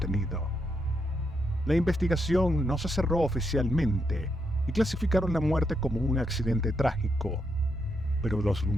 La investigación no se cerró oficialmente y clasificaron la muerte como un accidente trágico, pero los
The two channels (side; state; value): both; normal; correlation 0.80